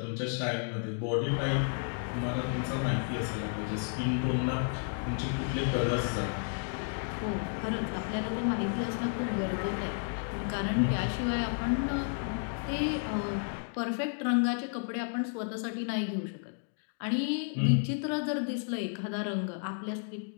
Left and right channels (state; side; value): silent; right; 56 dB below the other